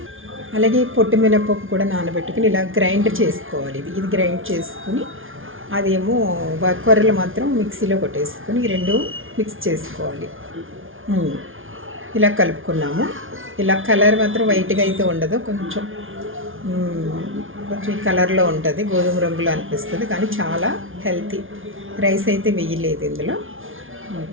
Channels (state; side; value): late; left; 0.58 ms